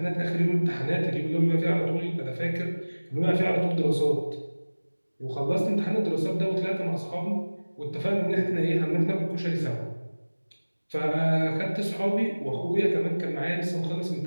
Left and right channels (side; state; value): both; inverted; correlation -1.00